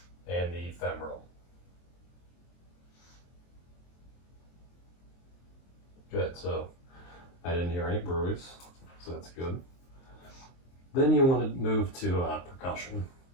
And the femoral. Good, so I didn't hear any bruits, so that's good. Then you want to move to percussion,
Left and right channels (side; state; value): right; late; 23 ms